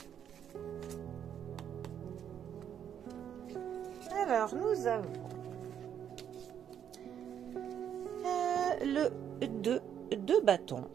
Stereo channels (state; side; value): quieter; left; 9.1 dB